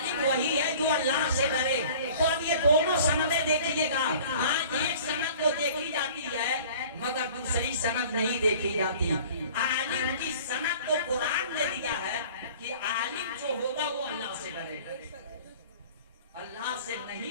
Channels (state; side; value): inverted; both; correlation -0.47